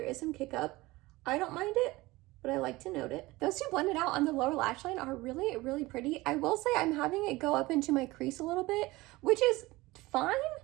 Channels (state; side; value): quieter; left; 20.4 dB